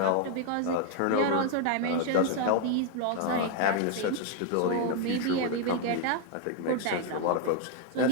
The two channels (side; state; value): both; different; correlation 0.00